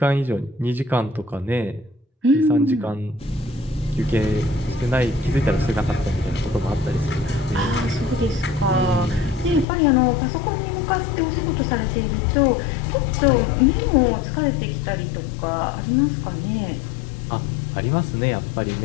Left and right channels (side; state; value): right; drops out; at 9.7 s